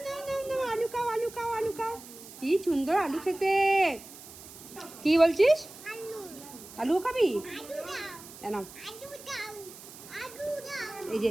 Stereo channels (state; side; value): noise; right; hiss, 17 dB below the sound